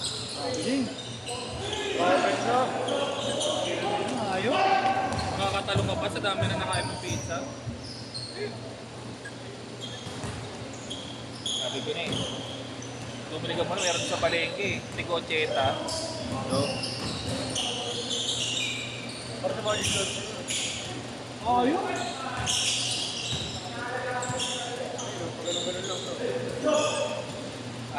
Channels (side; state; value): both; identical; correlation 1.00